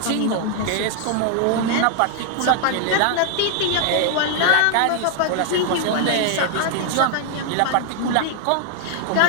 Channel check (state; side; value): different; both; correlation 0.00